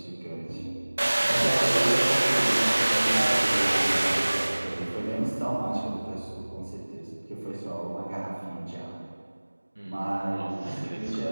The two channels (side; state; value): both; inverted; correlation -1.00